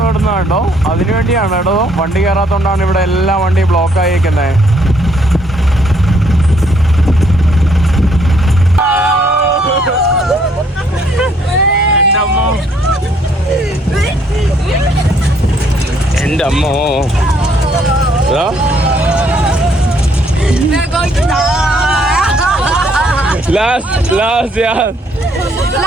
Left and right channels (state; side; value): normal; both; correlation 0.67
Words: കിടന്ന കേട്ടോ. അതിനുവേണ്ടിയാണ് കേട്ടോ വണ്ടി കയറാത്തോണ്ടാണ് ഇവിടെ എല്ലാ വണ്ടിയും ബ്ലോക്ക് ആയിരിക്കുന്നത്. എന്റെ അമ്മോ Last